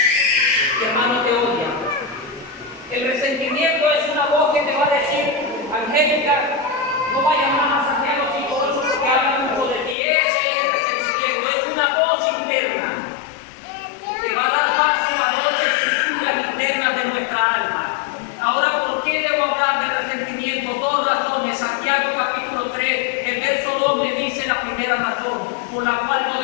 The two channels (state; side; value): drops out; right; at 10.0 s